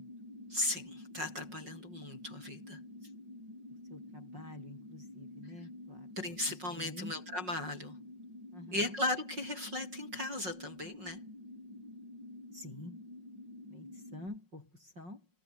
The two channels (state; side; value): late; left; 5.5 ms